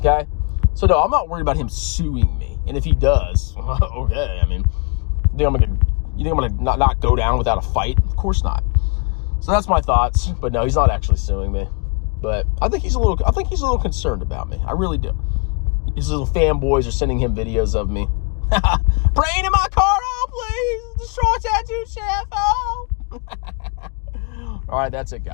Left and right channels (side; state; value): right; quieter; 35.2 dB